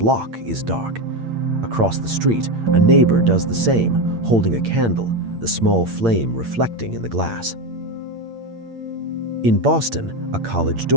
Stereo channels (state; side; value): late; left; 8.8 ms